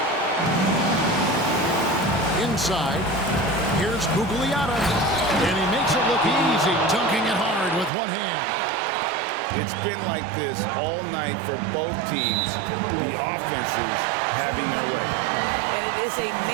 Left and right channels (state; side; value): drops out; left; at 7.9 s